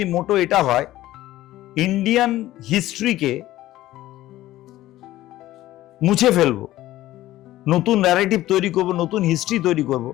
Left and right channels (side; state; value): right; quieter; 15.3 dB